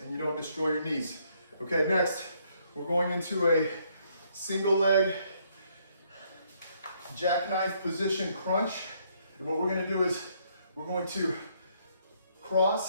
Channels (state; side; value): inverted; both; correlation -0.70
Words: you don't destroy your knees. Okay, next, we're going into a single leg jackknife position crunch. And what we're gonna do is we're going to